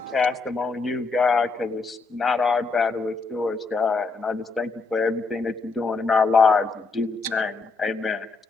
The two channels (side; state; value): right; quieter; 4.2 dB